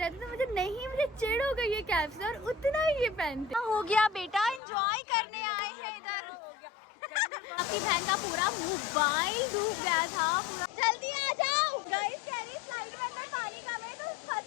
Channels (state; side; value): drops out; right; at 4.6 s